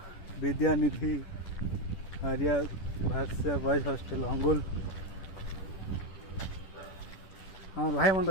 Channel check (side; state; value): right; late; 10 ms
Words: विद्यानिधि आर्या भाष्य बॉयज हॉस्टेल अंगुल আমার ভাই মনে